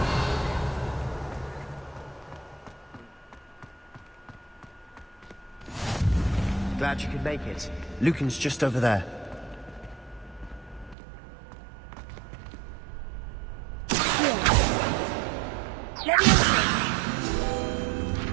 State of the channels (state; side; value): drops out; left; at 11.0 s